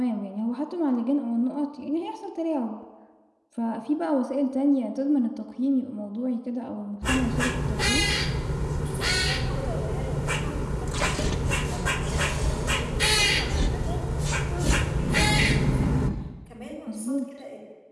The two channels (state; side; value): identical; both; correlation 1.00